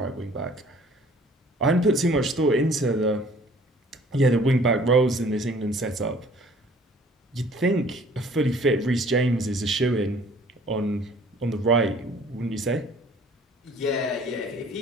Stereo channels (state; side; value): normal; both; correlation 0.53